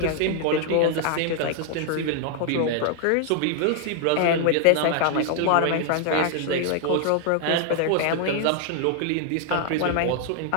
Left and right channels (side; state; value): both; different; correlation 0.00